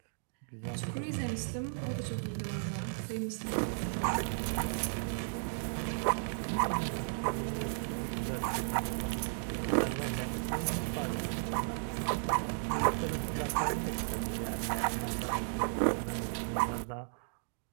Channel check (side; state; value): left; silent; digital silence